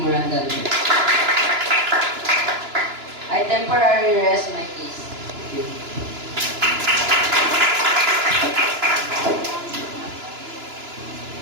I temporarily rest my case. Thank you.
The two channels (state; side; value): late; left; 2.9 ms